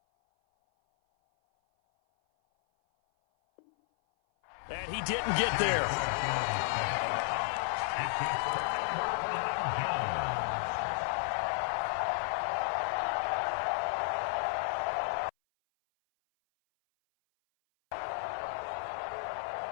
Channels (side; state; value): right; silent; 56 dB below the other